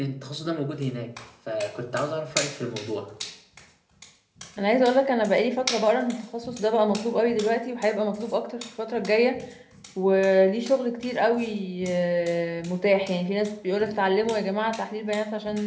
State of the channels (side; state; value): both; identical; correlation 1.00